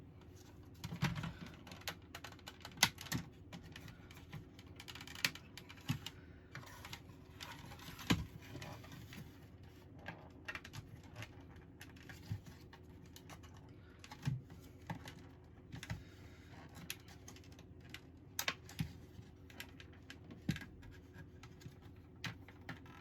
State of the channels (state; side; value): identical; both; correlation 1.00